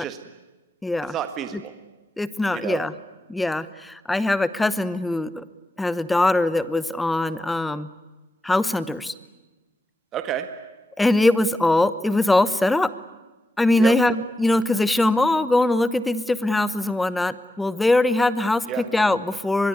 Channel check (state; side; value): normal; both; correlation 0.90